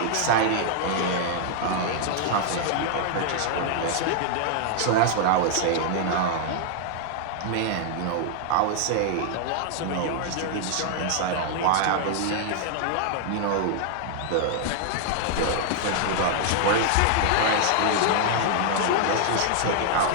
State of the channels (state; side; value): different; both; correlation -0.01